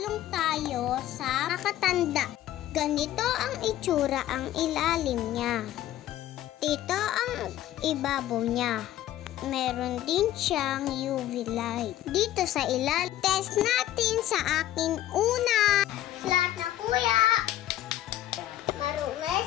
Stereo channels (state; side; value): quieter; right; 13.3 dB